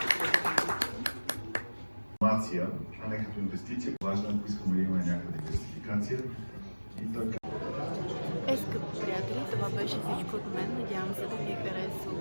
Информация, а не като инвестиция. Важно, ако искаме да имаме някаква диверсификация. И така. Скъпи приятели, това беше всичко от мен. Надявам се да ви е харесало.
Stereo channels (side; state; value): both; inverted; correlation -1.00